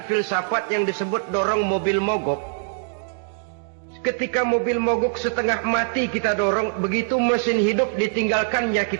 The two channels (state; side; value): silent; left; digital silence